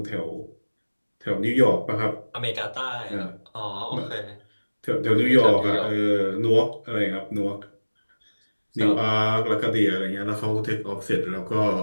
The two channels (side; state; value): both; inverted; correlation -1.00